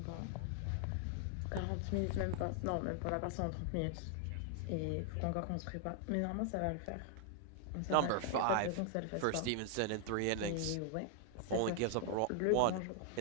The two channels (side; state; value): both; different; correlation 0.00